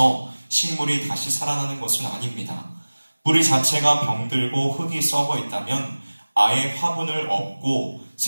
식물이 다시 살아나는 것은 아닙니다. 뿌리 자체가 병들고 흙이 썩어 있다면 아예 화분을 엎고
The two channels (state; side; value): inverted; both; correlation -1.00